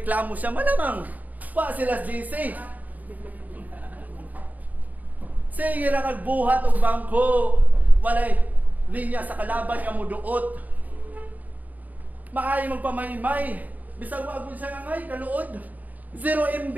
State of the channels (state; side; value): late; left; 0.078 ms